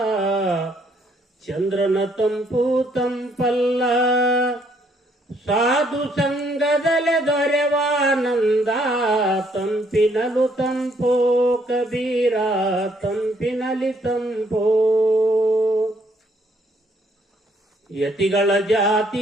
ಚಂದ್ರನ ತಂಪು ತಂಪಲ್ಲ. ಸಾಧು ಸಂಘದಲೆ ದೊರೆವಾನಂದ, ತಂಪಿನಲು ತಂಪೋ ಕಬೀರ, ತಂಪಿನಲಿ ತಂಪೋ. ಯತಿಗಳ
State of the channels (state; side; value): normal; both; correlation 0.68